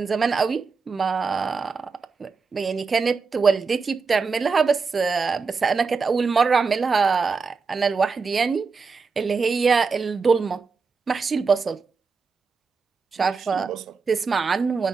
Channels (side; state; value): left; quieter; 4.9 dB